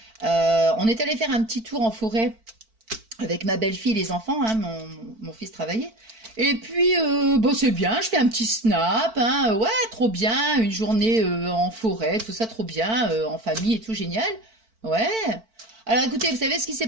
On est allé faire un petit tour en forêt avec ma belle-fille et les enfants, hein, mon fils travaillait. Et puis, bon, c'est bien, je fais un petit snap, hein, ouais, trop bien, une journée en forêt, tout ça, trop bien, en famille et tout, génial. Ouais. Alors écoutez, vous savez ce qui s'est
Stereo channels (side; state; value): left; late; 4.5 ms